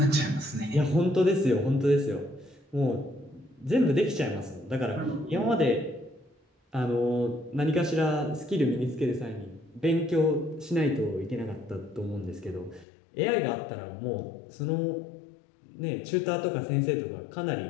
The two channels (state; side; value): drops out; right; at 12.9 s